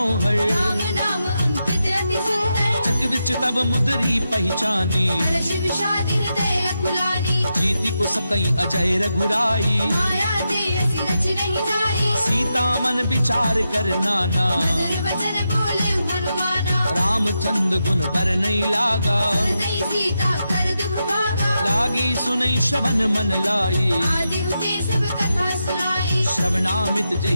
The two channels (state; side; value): inverted; both; correlation -0.87